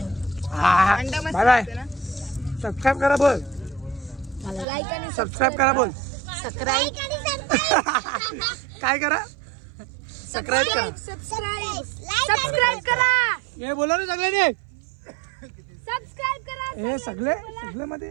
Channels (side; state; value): left; drops out; at 4.7 s